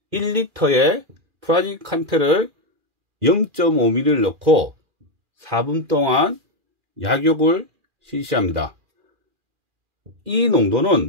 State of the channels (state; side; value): late; left; 2.4 ms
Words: 1리터의 프라질 콴텔을 0.5ml를 넣고 4분 동안 약욕을 실시합니다. 이